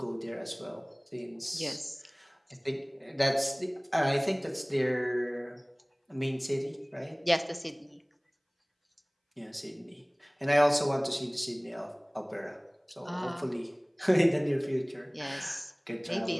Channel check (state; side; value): identical; both; correlation 1.00